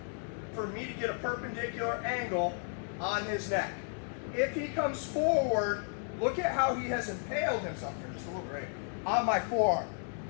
for me to get a perpendicular angle on his neck. If he comes forward, look at how he has impaled himself here, just a little bit, right, on my forearm.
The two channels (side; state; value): right; silent; 55 dB below the other